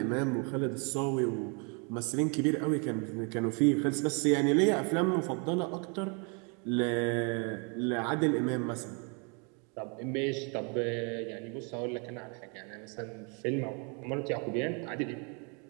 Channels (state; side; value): quieter; left; 35.0 dB